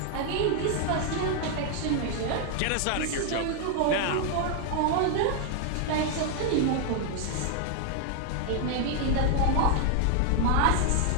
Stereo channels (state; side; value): different; both; correlation 0.00